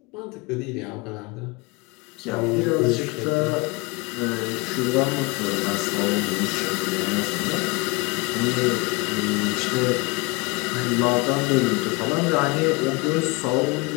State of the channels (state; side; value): quieter; right; 26.2 dB